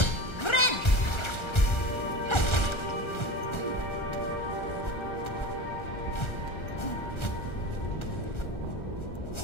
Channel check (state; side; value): late; right; 1.3 ms